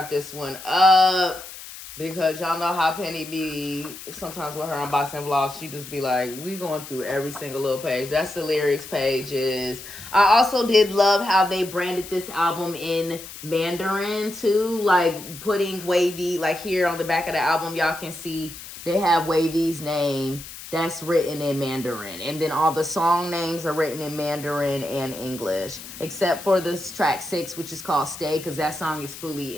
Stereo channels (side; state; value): left; noise; hiss, 13 dB below the sound